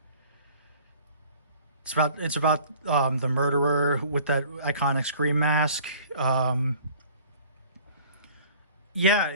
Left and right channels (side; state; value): both; inverted; correlation -0.50